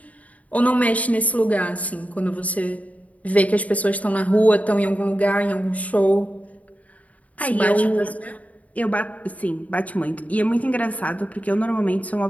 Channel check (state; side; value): late; right; 0.070 ms